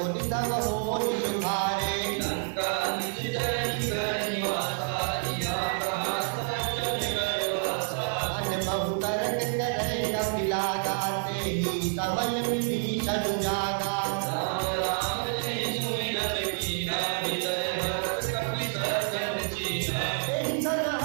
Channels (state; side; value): silent; left; 59 dB below the other